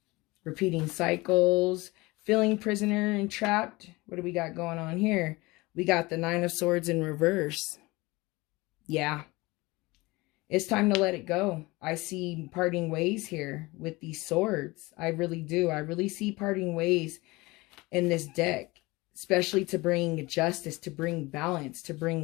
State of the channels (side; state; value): right; quieter; 22.4 dB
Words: Repeating cycles, feeling prisoner and trapped. What do we got going on here? We got the Nine of Swords in reverse. Yeah. It's time to let it go. I see parting ways here with these swords. I really do. I really see parting ways in this deck, especially to bring justice, to bring balance, to